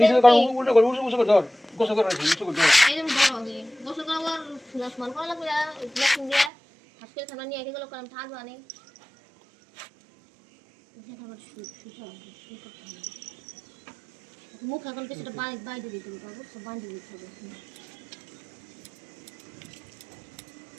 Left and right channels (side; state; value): left; drops out; at 6.5 s